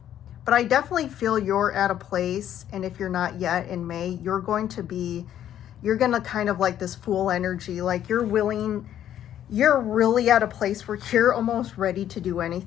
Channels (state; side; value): quieter; right; 10.9 dB